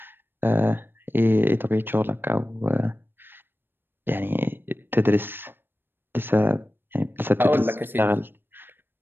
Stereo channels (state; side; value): late; left; 0.099 ms